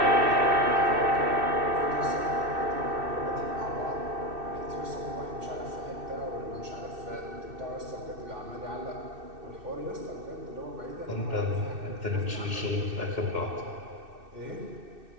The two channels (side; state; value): left; late; 2.6 ms